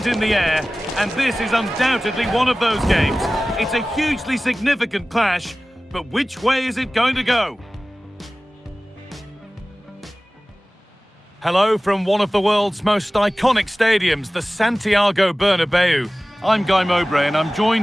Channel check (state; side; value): normal; both; correlation 0.97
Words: in the air, and this is undoubtedly one of those games. It's a hugely significant clash, but which way is it going to go? Hello from one of the world's most iconic stadiums, the Santiago Bernabeu. I'm Guy Mowbray and I'm